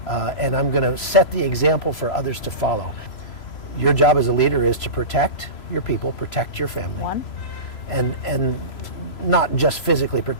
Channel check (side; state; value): right; late; 3.0 ms